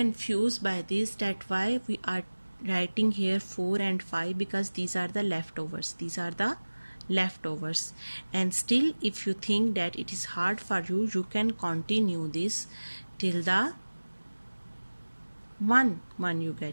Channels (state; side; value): inverted; both; correlation -1.00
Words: by this, that why we are writing here 4 and 5, because these are the leftovers, and still if you think that it is hard for you, you can continue this till the 1 you